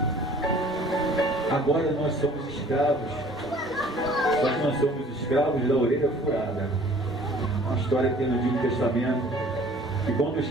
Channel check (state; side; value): normal; both; correlation 0.52